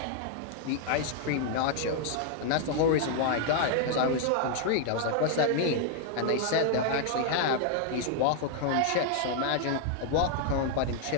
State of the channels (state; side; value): different; both; correlation 0.00